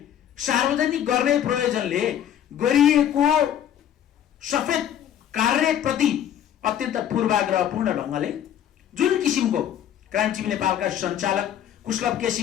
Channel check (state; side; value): quieter; right; 10.2 dB